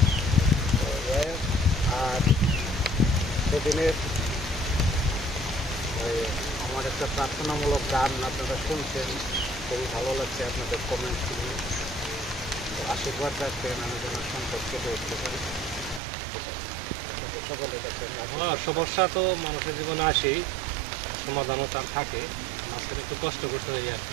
আর সেদিনের আমার একটা প্রার্থনামূলক গান আপনারা শুনছেন, খুবই ভালো লাগছে আপনাদের কমেন্ট শুনে। আশীর্বাদ রাখবেন আমি যেন সংকট কেটে উঠতে পারি। সকলে দেখবেন সমস্যা তো মানুষের জীবনে আসেই, সমাধানও তার থাকে, মাঝখানে একটু কষ্ট করতে হয় আর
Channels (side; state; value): left; drops out; at 16.0 s